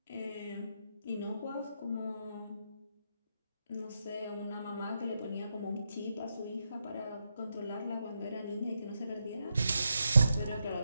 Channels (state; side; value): inverted; both; correlation -0.84